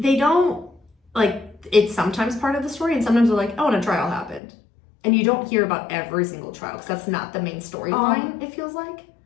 don't like, it's sometimes part of the story and sometimes they're like, oh, and a trial happened. And you don't hear about every single trial because that's not the main storyline, it feels like.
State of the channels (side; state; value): right; drops out; at 4.4 s